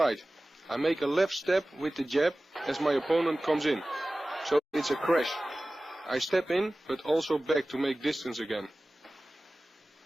I make a left step with the jab as my opponent comes in. So it's a crash. I step in but also back to make distance again.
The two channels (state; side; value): normal; both; correlation 0.97